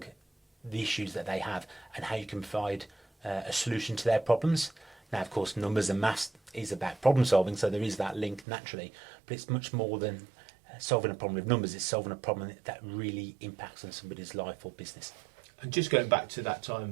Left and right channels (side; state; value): left; drops out; at 8.5 s